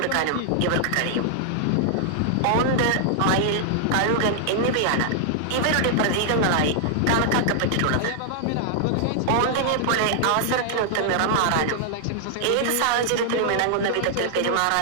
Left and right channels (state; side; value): different; both; correlation -0.01